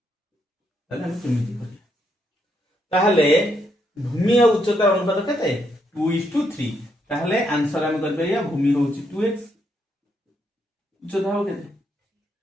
ताहले हम केमिति करिया? ताहले भूमि और उच्चतार अनुपात केते 2:3, ताहले आंसर हम कर परिया भूमि होची 2x, उच्चता हो केते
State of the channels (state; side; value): normal; both; correlation 0.76